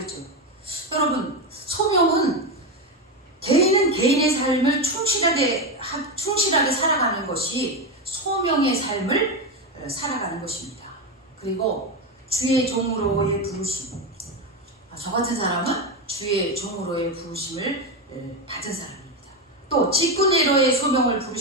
여러분, 소명은 개인은 개인의 삶을 충실하게 살아가는 것이 소명의 삶을 살아가는 것입니다. 그리고 주의 종으로의 부르심, 저 같은 사람은 주의 종으로의 부르심을 받은 사람입니다. 또 직분의로의 소명을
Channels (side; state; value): both; normal; correlation 0.13